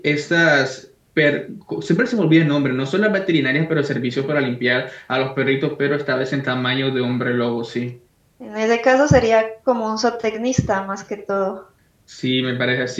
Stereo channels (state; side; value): identical; both; correlation 1.00